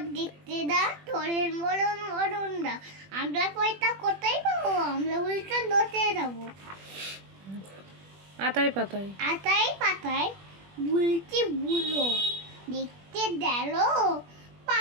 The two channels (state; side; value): late; left; 21 ms